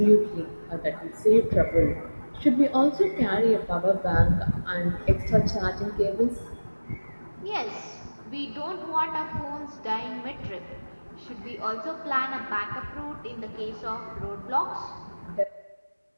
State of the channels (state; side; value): inverted; both; correlation -1.00